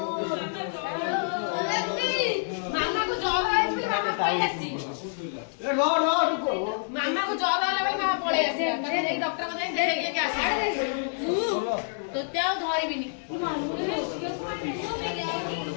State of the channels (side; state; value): right; silent; digital silence